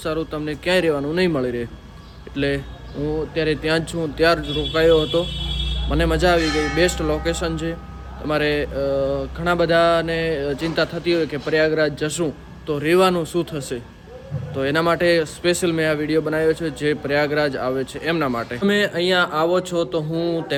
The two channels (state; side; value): identical; both; correlation 1.00